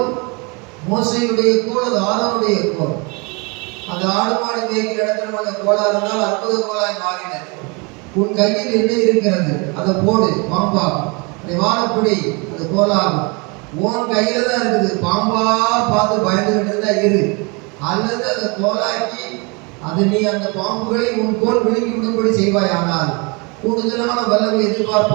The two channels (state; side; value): quieter; left; 30.3 dB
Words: மோசையுடைய கோல், அது ஆரோனுடைய கோல். அந்த ஆடு மாடு மேய்க்கிற இடத்துல அந்த கோலா இருந்தால் அற்புத கோலாய் மாறினது. உன் கையில் என்ன இருக்கிறது அதை போடு, பாம்பாகும். அதை வாழப்படி, அது கோலாகும். உன் கையில தான் இருக்குது, பாம்பா பார்த்து பயந்துகிட்டு இருந்தா இரு. அல்லது அதை கோலாக்கி அது நீ அந்த பாம்புகளை உன் கோல் விழுங்கி விடும்படி செய்வாய். ஆனால் கூடுதலான வல்லமை